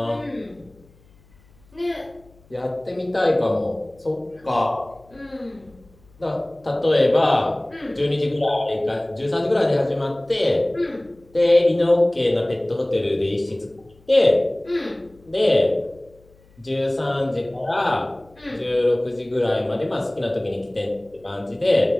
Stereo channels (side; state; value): left; noise; hum, 29 dB below the sound